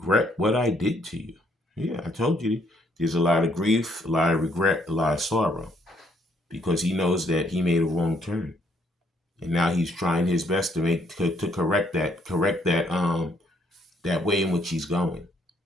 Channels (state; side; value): normal; both; correlation 0.69